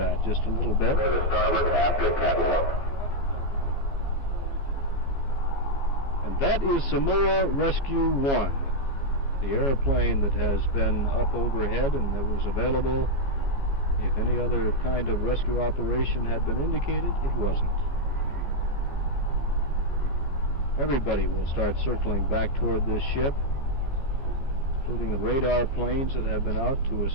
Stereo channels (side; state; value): right; late; 14 ms